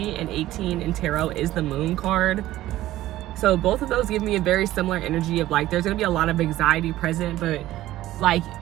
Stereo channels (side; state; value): left; quieter; 15.1 dB